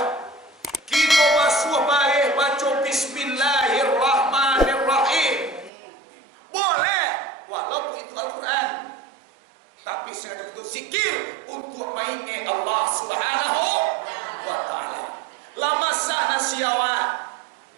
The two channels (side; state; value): left; drops out; at 5.7 s